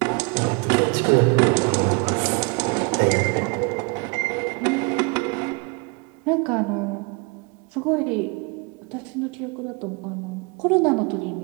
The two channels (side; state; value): left; quieter; 30.2 dB